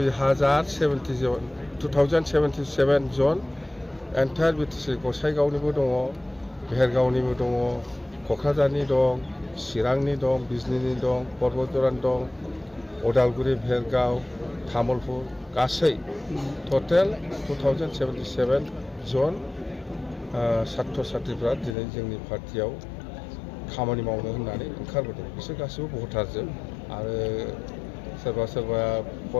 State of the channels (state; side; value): drops out; right; at 21.8 s